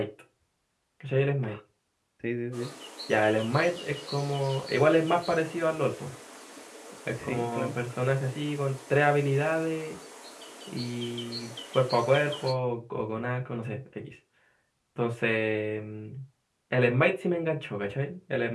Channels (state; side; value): identical; both; correlation 1.00